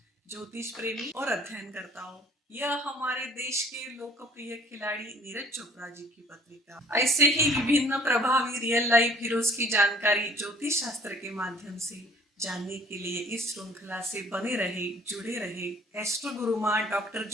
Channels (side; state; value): both; normal; correlation 0.54